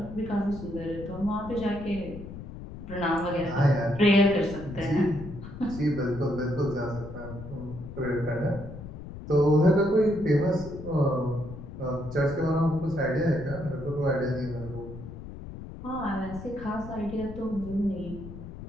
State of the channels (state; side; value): noise; left; rumble, 12 dB below the sound